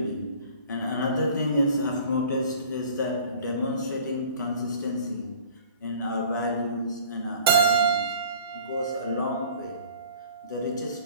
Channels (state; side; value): inverted; both; correlation -0.48